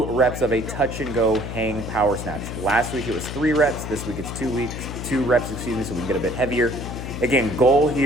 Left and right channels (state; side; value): noise; left; hum, 7 dB below the sound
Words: reps of a touch and go hang power snatch. Last week it was 3 reps. This week it's 2 reps, so we can get a bit heavier. Again, goal